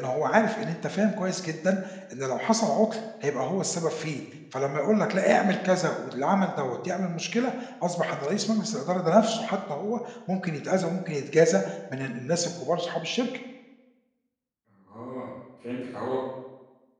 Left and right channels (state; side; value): identical; both; correlation 1.00